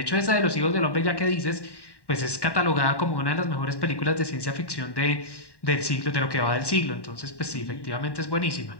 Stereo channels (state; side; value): late; right; 1.1 ms